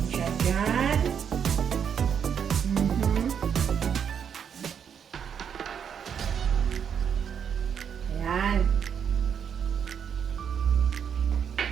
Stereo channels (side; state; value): left; quieter; 7.7 dB